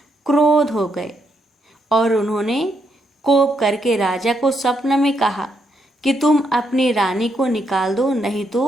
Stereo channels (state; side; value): normal; both; correlation 0.78